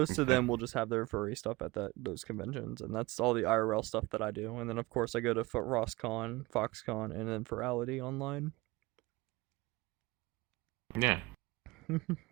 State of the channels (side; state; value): left; quieter; 22.2 dB